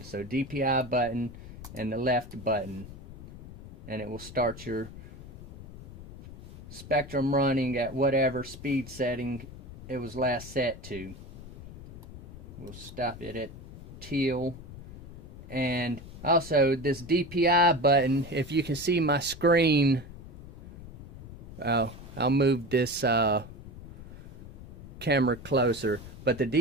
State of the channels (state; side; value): noise; left; rumble, 14 dB below the sound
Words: So DPI button and the left button, and it will start your spectrum running at whatever speed setting it was last set to. We'll stop it at teal. And also this DPI button, if you can see my screen, I'll move this camera closer. But the